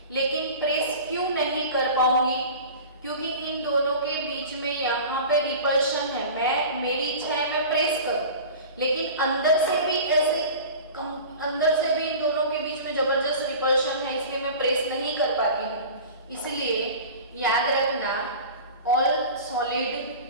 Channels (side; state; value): both; inverted; correlation -0.36